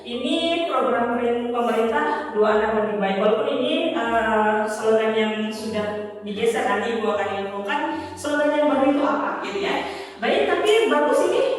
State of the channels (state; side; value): identical; both; correlation 1.00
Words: Ini program pemerintah dua anak lebih baik. Walaupun ini slogan yang sudah digeser, nanti Ibu akan infokan slogan yang baru itu apa gitu ya. Baik, tapi bagus ini